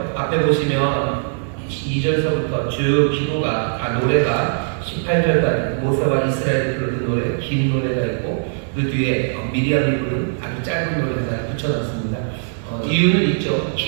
앞에 보시면 2절서부터 쭉 기도가 노래가 18절까지 모세와 이스라엘이 부르는 노래, 긴 노래가 있고 그 뒤에 미리암이 부른 아주 짧은 노래 하나 붙여놨습니다. 이유는 있죠.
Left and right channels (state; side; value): silent; left; 63 dB below the other